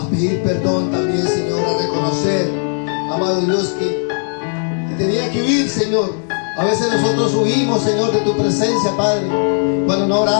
pedir perdón también, Señor, a reconocer, amado Dios, que tenía que huir, Señor. A veces nosotros huimos, Señor, de tu presencia, Padre, cuando no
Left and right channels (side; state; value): right; silent; 56 dB below the other